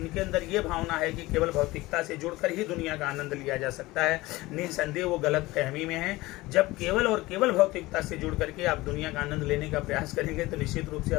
अंदर ये भावना है कि केवल भौतिकता से जुड़कर ही दुनिया का आनंद लिया जा सकता है, निसंदेह वो गलत फहमी में है। जब केवल और केवल भौतिकता से जुड़ करके आप दुनिया का आनंद लेने का प्रयास करेंगे तो निश्चित रूप से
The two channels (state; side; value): quieter; right; 19.8 dB